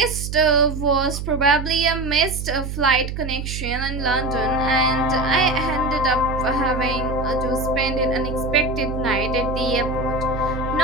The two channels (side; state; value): right; noise; hum, 6 dB below the sound